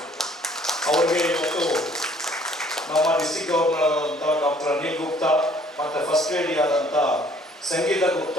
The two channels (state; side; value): normal; both; correlation 0.59